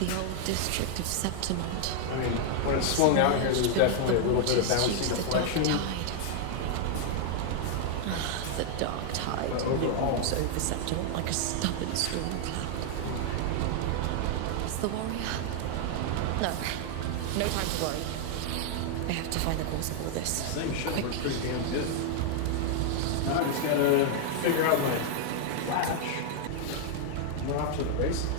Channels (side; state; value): both; different; correlation 0.00